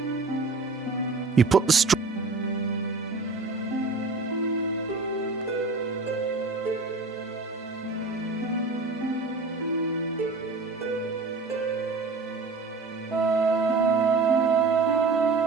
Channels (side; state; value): left; quieter; 3.8 dB